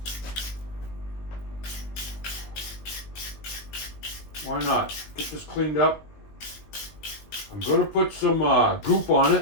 Why not? Get this cleaned up. I'm going to put some goop on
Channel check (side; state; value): right; late; 20 ms